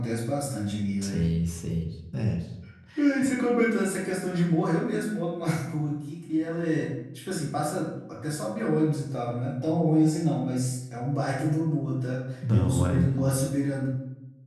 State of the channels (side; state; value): both; identical; correlation 1.00